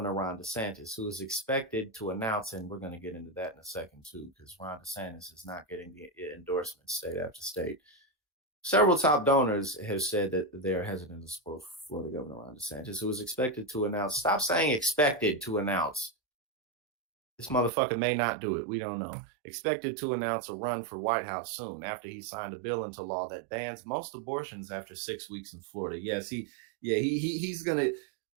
Ron DeSantis, who is expected to announce, and we're going to get into that in a second too, because Ron DeSantis is not getting the endorsements state after state. Several top donors have said that they're hesitant to support Florida Governor Ron DeSantis, who is expected to announce. Stop saying expected to announce. This motherfucker may not do it. We don't know. Expected to announce a run for White House soon after he signed a bill into law that bans most abortions after 6 weeks in Florida. Yes, he's going to,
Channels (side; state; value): left; drops out; at 17.7 s